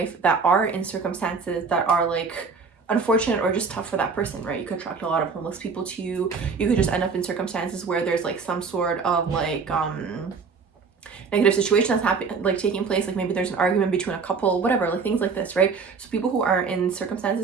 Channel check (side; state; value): left; quieter; 5.1 dB